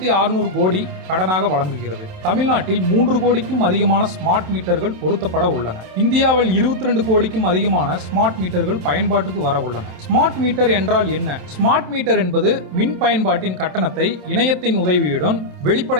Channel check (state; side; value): late; left; 27 ms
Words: கோடி கடனாக வழங்குகிறது. தமிழ்நாட்டில் 3 கோடிக்கும் அதிகமான ஸ்மார்ட் மீட்டர்கள் பொருத்தப்பட உள்ளன. இந்தியாவில் 22 கோடிக்கும் அதிகமான ஸ்மார்ட் மீட்டர்கள் பயன்பாட்டுக்கு வர உள்ளன. ஸ்மார்ட் மீட்டர் என்றால் என்ன? ஸ்மார்ட் மீட்டர் என்பது மின் பயன்பாட்டின் கட்டணத்தை இணையத்தின் உதவியுடன்